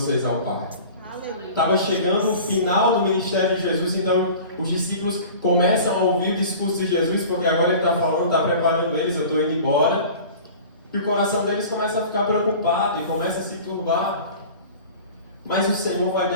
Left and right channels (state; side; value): inverted; both; correlation -0.41